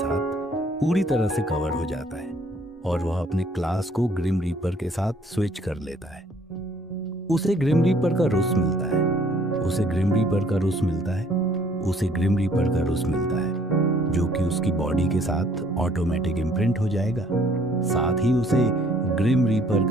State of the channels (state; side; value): normal; both; correlation 0.61